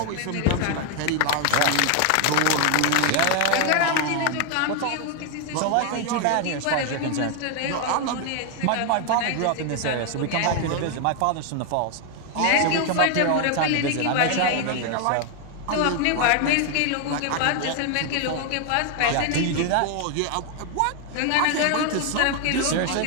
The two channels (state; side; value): different; both; correlation 0.01